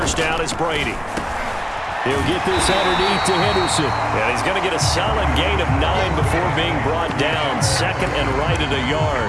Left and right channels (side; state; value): both; identical; correlation 1.00